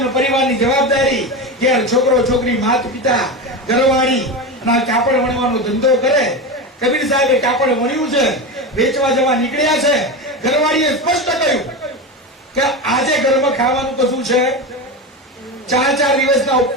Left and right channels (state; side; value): normal; both; correlation 0.20